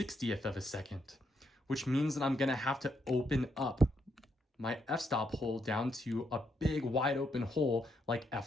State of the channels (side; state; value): both; normal; correlation 0.78